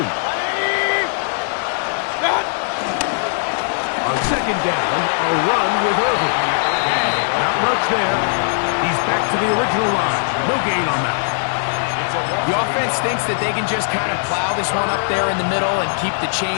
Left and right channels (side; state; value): right; silent; digital silence